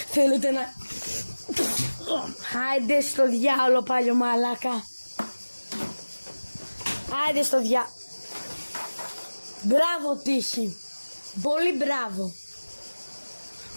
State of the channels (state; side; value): inverted; both; correlation -1.00